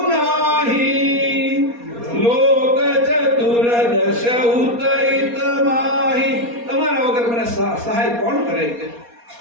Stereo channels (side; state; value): left; late; 4.2 ms